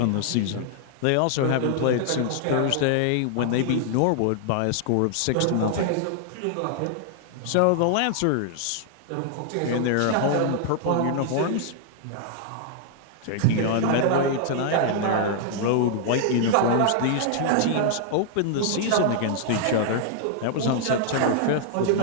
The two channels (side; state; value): both; different; correlation -0.01